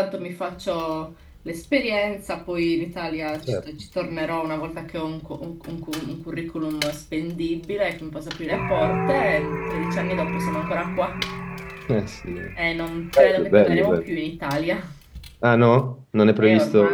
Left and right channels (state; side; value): identical; both; correlation 1.00